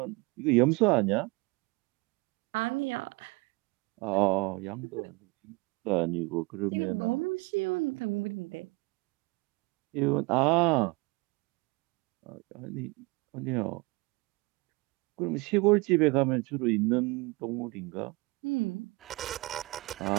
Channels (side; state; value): left; quieter; 25.4 dB